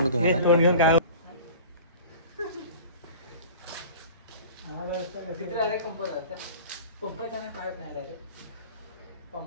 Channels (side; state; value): both; inverted; correlation -0.40